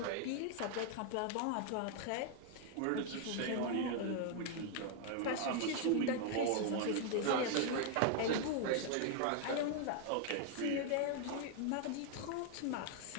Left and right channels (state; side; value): different; both; correlation 0.00